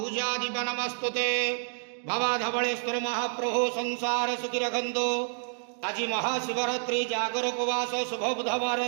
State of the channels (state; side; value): silent; left; 59 dB below the other